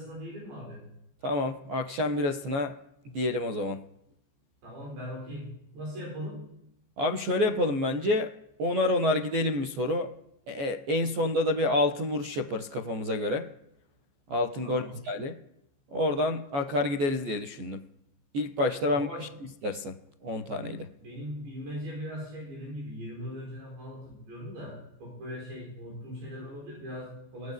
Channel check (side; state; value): left; late; 14 ms